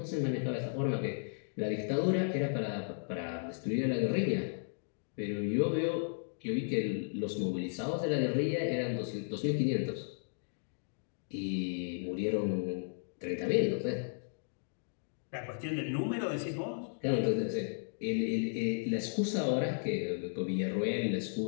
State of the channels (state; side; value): silent; right; digital silence